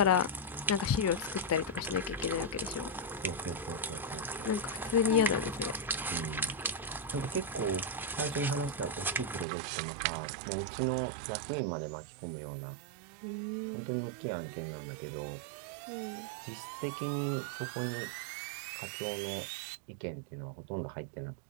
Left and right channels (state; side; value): drops out; left; at 9.5 s